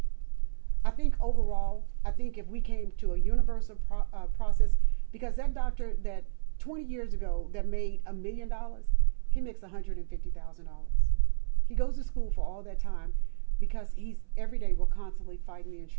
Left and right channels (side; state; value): left; silent; 58 dB below the other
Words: I think overall, if we came to a universal process, because that doctor that 20 years ago that made $1 million, he makes $150,000. He goes to school for all that time because every day we're constantly fighting the